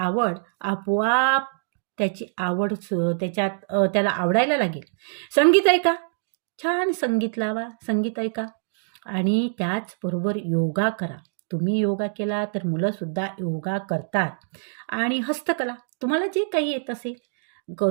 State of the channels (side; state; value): left; silent; digital silence